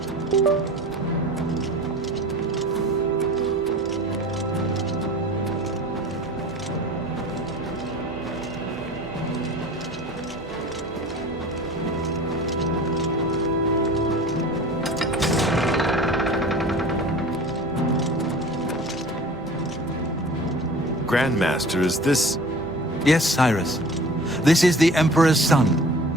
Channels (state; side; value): normal; both; correlation 0.41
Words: Grandmaster, is this... Yes, Cyrus. This is the Emperor's son,